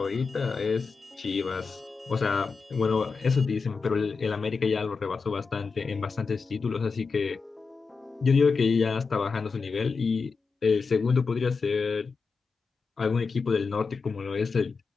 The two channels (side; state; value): right; quieter; 4.8 dB